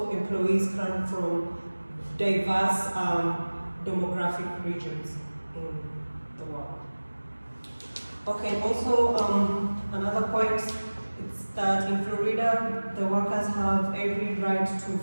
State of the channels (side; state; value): both; inverted; correlation -1.00